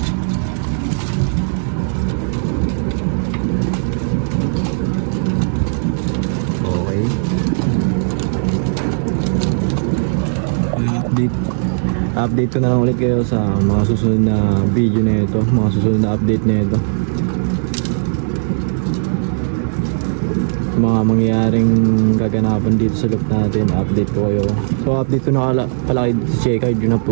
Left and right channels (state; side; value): silent; left; digital silence